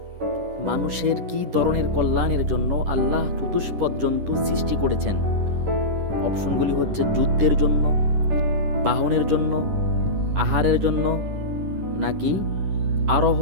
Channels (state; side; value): late; left; 10 ms